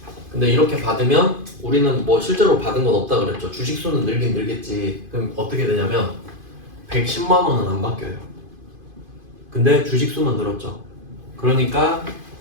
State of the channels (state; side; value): late; left; 2.5 ms